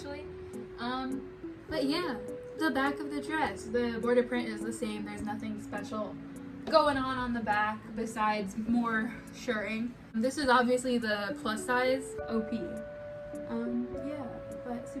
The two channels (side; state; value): both; identical; correlation 1.00